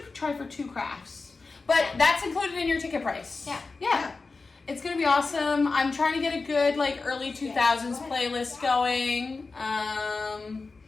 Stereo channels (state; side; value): quieter; right; 4.0 dB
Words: try for 2 crafts. But that's included in your ticket price. Yeah. It's going to be awesome. I'm trying to get a good, early 2000s playlist going.